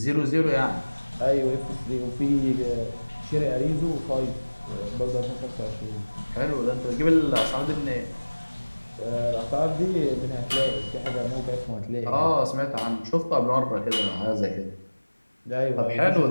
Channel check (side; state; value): both; inverted; correlation -1.00